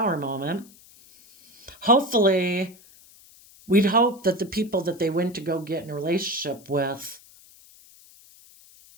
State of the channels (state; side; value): noise; left; hiss, 25 dB below the sound